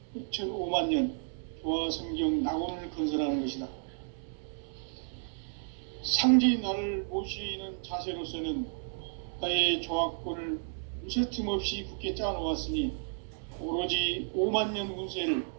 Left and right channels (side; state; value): left; silent; digital silence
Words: 6,5만 년 조화 성경 낙원을 건설하는 것이다. 상제인 나를 모시는 자세로서는 나의 조합권을 무쇠틈 없이 굳게 짜놓았으니 오로지 5만 년 운세를